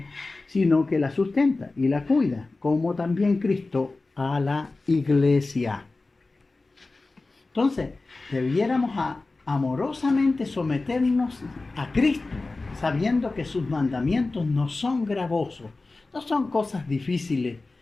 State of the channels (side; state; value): right; quieter; 3.4 dB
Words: sino que la sustenta y la cuida, como también Cristo a la iglesia. Entonces, debiéramos amorosamente someternos a Cristo, sabiendo que sus mandamientos no son gravosos, no son cosas difíciles